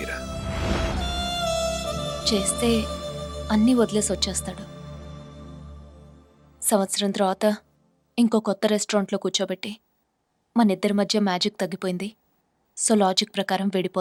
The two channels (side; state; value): both; identical; correlation 1.00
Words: చేస్తే అన్నీ వదిలేసి వచ్చేస్తాడు. సంవత్సరం తర్వాత ఇంకో కొత్త రెస్టారెంట్లో కూర్చోబెట్టి మన ఇద్దరి మధ్య మ్యాజిక్ తగ్గిపోయింది, సో లాజిక్ ప్రకారం